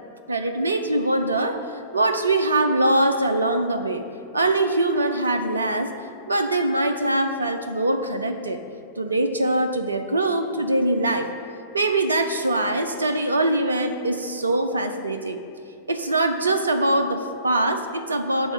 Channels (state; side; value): inverted; both; correlation -0.68